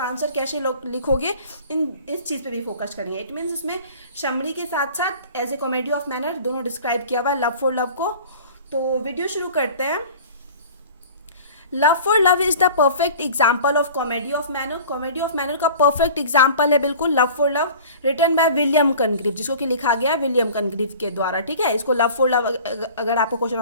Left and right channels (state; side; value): inverted; both; correlation -0.43